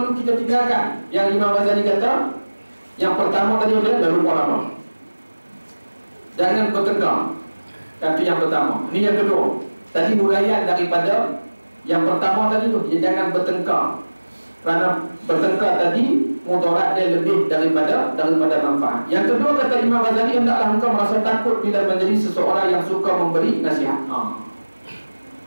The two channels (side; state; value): both; inverted; correlation -1.00